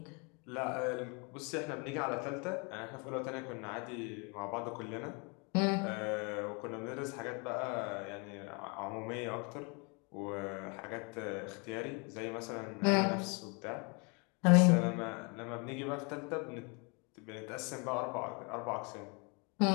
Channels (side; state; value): right; quieter; 32.1 dB